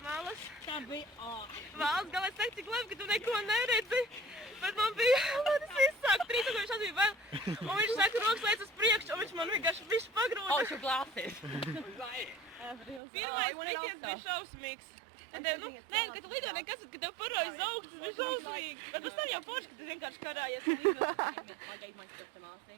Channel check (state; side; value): drops out; left; at 13.0 s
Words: malas. Tā bija Valsts galā es teicu, cik labi, ka tu neko neredzi. Bet man bija, tas viss sāk 3000 bija vēl. Un viņš saka, rokas lēc uz priekšu, un viņš man vienkārši visu pagrūda. Oh, it's your glasses. Pirmais tikies bija šausmīgs. Un tev, nē, ka tu lido nekas, ka tev parojas augsts, tas bija šausmīgi. Bet pēc tam jau forši, ka tu vienkārši karājies. I gave my stuff to